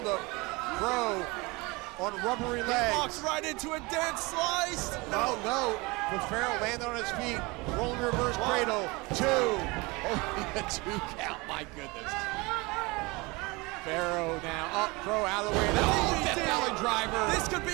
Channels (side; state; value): left; quieter; 25.2 dB